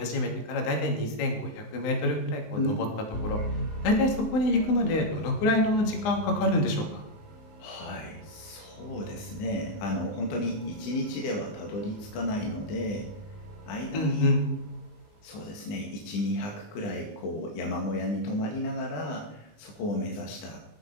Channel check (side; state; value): right; late; 20 ms